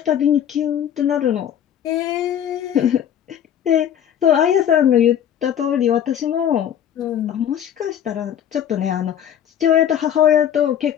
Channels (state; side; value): quieter; right; 9.7 dB